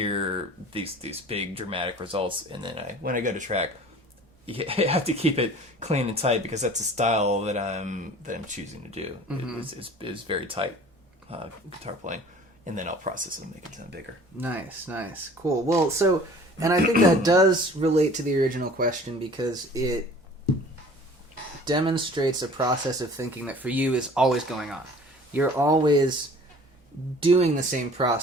these big dramatic results, and then when I go to track, you have to keep it clean and tight, because that's a style that I'm choosing to do. It's very tight guitar playing. And then I'll process it and make it sound bigger. Nice. Cool. Well, and I think that does relate to the original question, because it demonstrates a process of thinking that for you is always going on. You're always doing the same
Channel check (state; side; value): normal; both; correlation 0.47